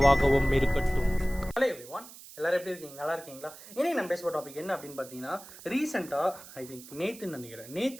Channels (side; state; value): right; noise; hiss, 17 dB below the sound